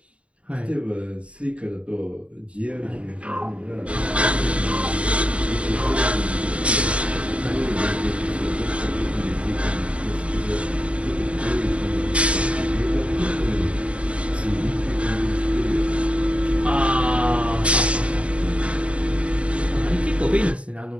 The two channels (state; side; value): late; left; 0.062 ms